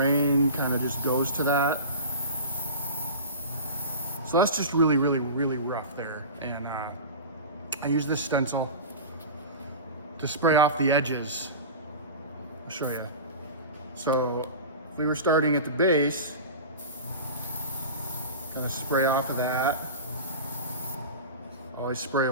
kind of just goes to that. So that's just really, really, really rough there. And I use this stencil to spray off the edges. I'll show you. So if we were starting at the base, gonna spray off of that. Always spray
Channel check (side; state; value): both; inverted; correlation -0.32